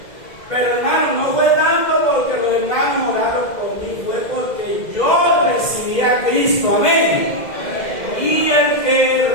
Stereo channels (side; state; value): right; late; 2.0 ms